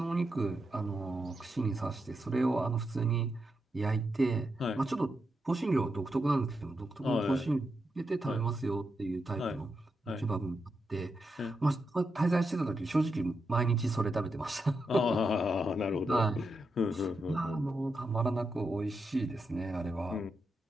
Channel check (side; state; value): both; normal; correlation 0.85